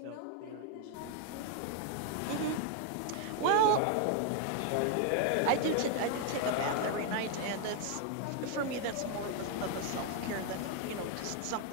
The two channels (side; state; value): both; different; correlation 0.00